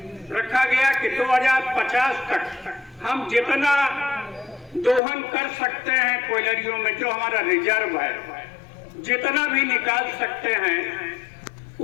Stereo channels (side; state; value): right; drops out; at 5.0 s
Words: रखा गया कि 2050 तक हम जितना दोहन कर सकते हैं कोयलरियों में, जो हमारा रिजर्व है, जितना भी निकाल सकते हैं